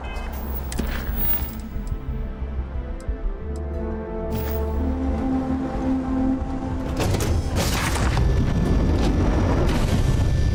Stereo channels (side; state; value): both; identical; correlation 1.00